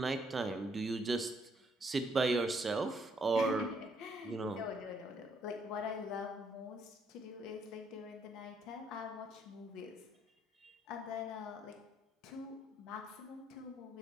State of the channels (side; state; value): both; normal; correlation 0.71